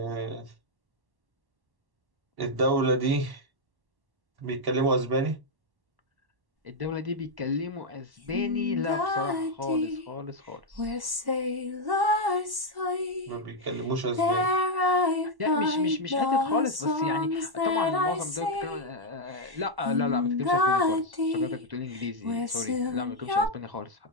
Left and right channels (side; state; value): left; late; 1.1 ms